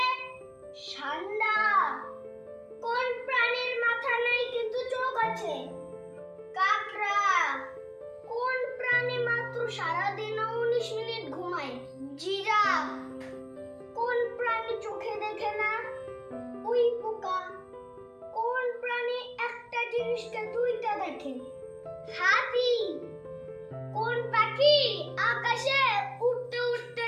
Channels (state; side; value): identical; both; correlation 1.00